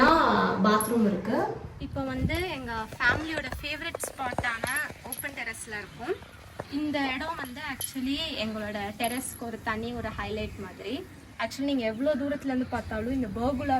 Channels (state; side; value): identical; both; correlation 1.00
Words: பாத்ரூம் இருக்கு. இப்போ வந்து எங்கள் ஃபேமிலியோட ஃபேவரட் ஸ்பாட்டான ஓப்பன் டெரஸில் இருக்கும். இந்த இடம் வந்து ஆக்சுவலி எங்களோட டெரஸ்க்கு ஒரு தனி ஒரு ஹைலைட் மாதிரி. ஆக்சுவலி நீங்கள் எவ்வளோ தூரத்துலேருந்து பார்த்தாலும் இந்த பர்குலா